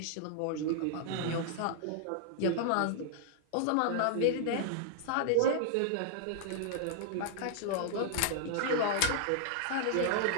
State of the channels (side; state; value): both; different; correlation -0.01